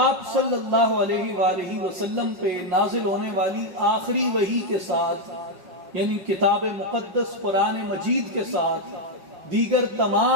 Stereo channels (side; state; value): left; late; 5.4 ms